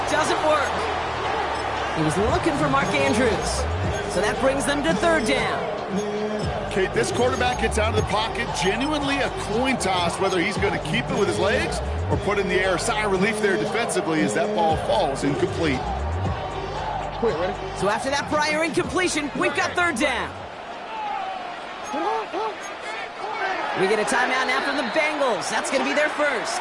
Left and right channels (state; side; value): identical; both; correlation 1.00